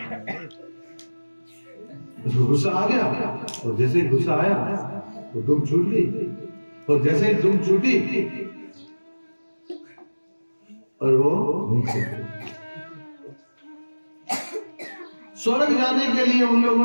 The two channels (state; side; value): inverted; both; correlation -1.00